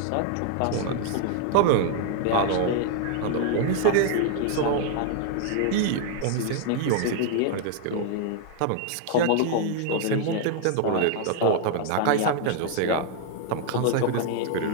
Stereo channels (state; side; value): different; both; correlation 0.00